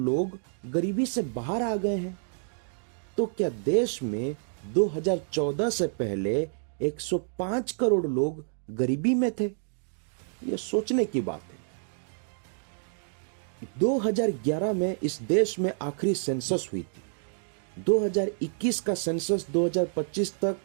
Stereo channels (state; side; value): silent; left; digital silence